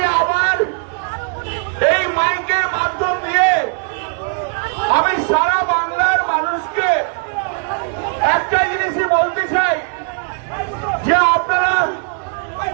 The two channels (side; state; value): left; quieter; 39.1 dB